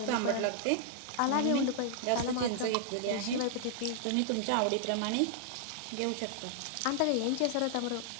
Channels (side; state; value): both; different; correlation 0.00